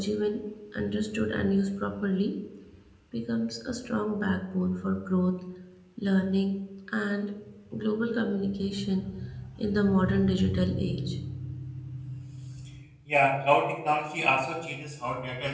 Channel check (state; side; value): identical; both; correlation 1.00